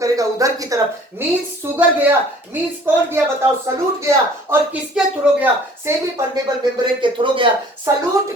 उधर की तरफ, मींस शुगर गया, मींस कौन गया बताओ, सलूट गया, और किसके थ्रू गया, सेमी परमेबल मेम्ब्रेन के थ्रू गया।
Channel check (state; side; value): normal; both; correlation 0.52